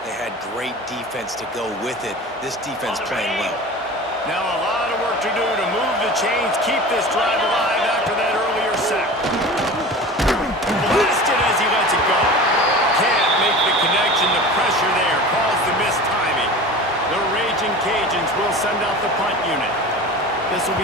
they had great defense to go with it. This defense playing well. Now a lot of work to do to move the chains, keep this drive alive after that earlier sack. Blasted as he lets it go. Can't make the connection. The pressure there caused the missed timing. The Raging Cajuns will send out the punt unit. This will be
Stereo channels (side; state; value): both; normal; correlation 0.35